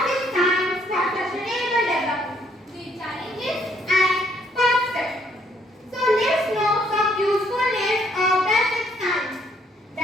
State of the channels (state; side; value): normal; both; correlation 0.68